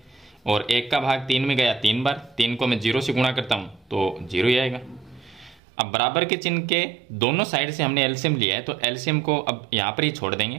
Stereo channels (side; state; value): left; drops out; at 5.6 s